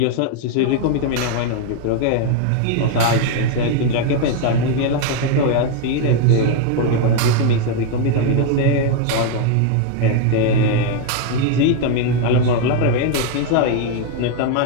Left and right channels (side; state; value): both; different; correlation 0.01